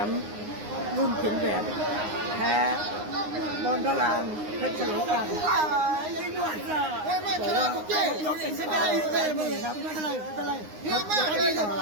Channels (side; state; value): left; late; 9.7 ms